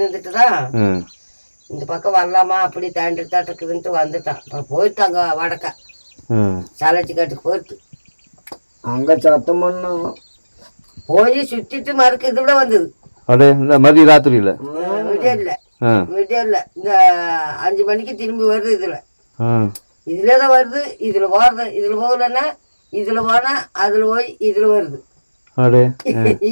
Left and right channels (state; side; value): inverted; both; correlation -1.00